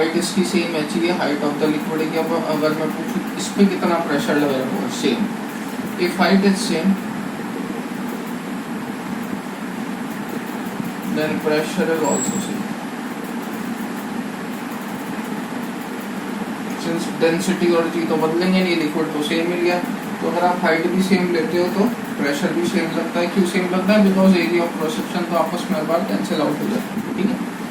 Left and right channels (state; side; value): identical; both; correlation 1.00